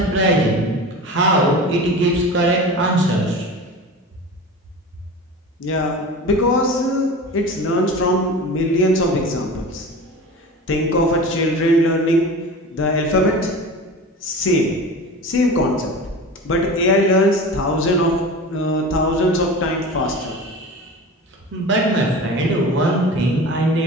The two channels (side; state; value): both; normal; correlation 0.33